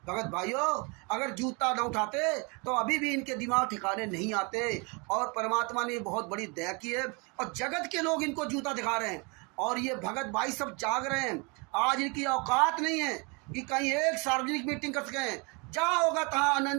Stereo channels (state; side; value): quieter; left; 31.1 dB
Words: भगत भाइयों, अगर जूता न उठाते तो अभी भी इनके दिमाग ठिकाने नहीं आते। और परमात्मा ने बहुत बड़ी दया की है और जगत के लोग इनको जूता दिखा रहे हैं। और ये भगत भाई सब जाग रहे हैं। आज इनकी औकात नहीं है कि कहीं एक सार्वजनिक मीटिंग कर सकें। जहाँ होगा तहाँ